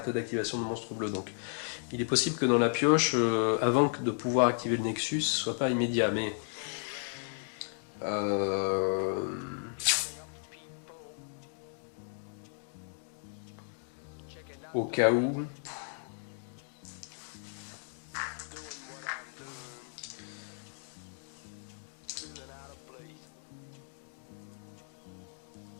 d'activation de monstre bleu. Donc il est possible que dans la pioche, avant de pouvoir activer le Nexus, ce soit pas immédiat, mais au cas où.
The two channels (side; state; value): right; silent; 55 dB below the other